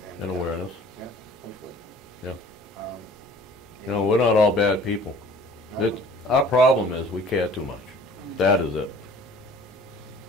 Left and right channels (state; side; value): normal; both; correlation 0.49